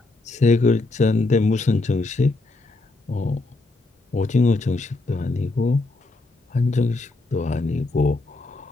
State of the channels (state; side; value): quieter; right; 3.2 dB